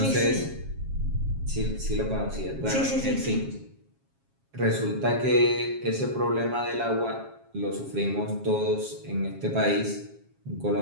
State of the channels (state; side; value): late; left; 7.4 ms